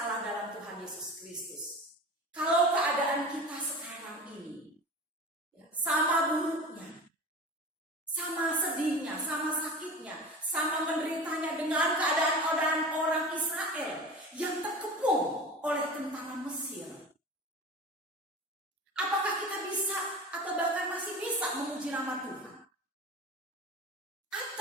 dalam Tuhan Yesus Kristus, kalau keadaan kita sekarang ini sama buruknya, sama sedihnya, sama sakitnya, sama menderitanya dengan keadaan orang Israel yang terkepung oleh tentara Mesir, apakah kita bisa atau bahkan masih bisa memuji nama Tuhan?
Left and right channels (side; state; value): both; normal; correlation 0.33